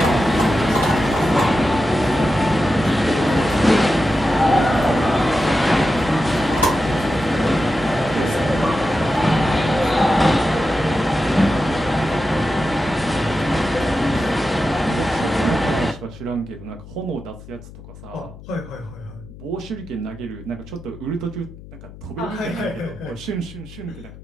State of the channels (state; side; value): noise; left; hum, 17 dB below the sound